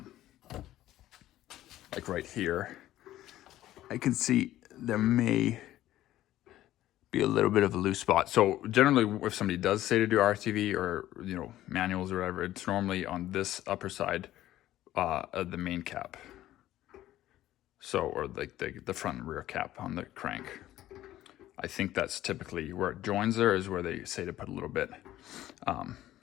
Like right here, I can see there may be a little bit of a loose spot. So generally, if somebody does say to do RTV or, you know, manuals or whatever, it's normally on this upper side of the main cap. So, or like the front and rear cap on the crank. I think that's typically where it joins there is where they say to put a little bit.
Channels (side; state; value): right; quieter; 14.0 dB